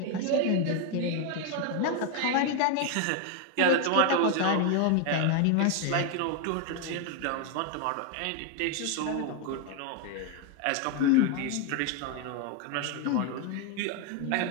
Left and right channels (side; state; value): both; different; correlation 0.01